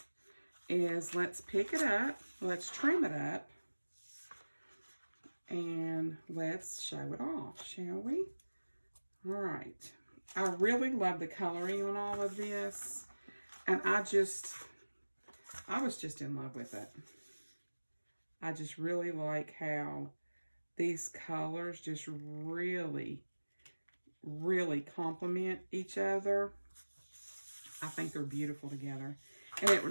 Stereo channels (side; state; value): both; inverted; correlation -1.00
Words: is let's pick it up. Let's trim it up. And let's show it off, shall we? All right. I really love the coloring on all of this. And I was just in love with it. I just really like how these colors just really, really complement each other. I think they're beautiful together. And it